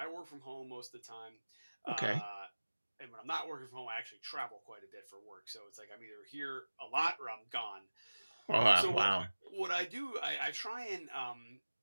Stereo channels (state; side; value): inverted; both; correlation -1.00